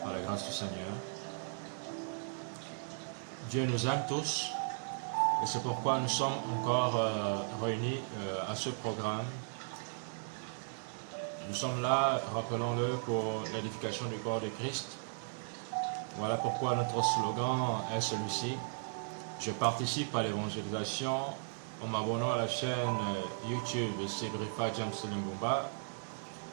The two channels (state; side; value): silent; left; digital silence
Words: par la grâce du Seigneur. Dieu nous aime tous et c'est pourquoi nous sommes encore réunis à ce programme. Nous sommes là, rappelons-le, pour l'édification du corps de Christ. Voilà pourquoi notre slogan est celui-ci. Je participe à l'évangélisation en m'abonnant à la chaîne YouTube de Segrifa James Limbumba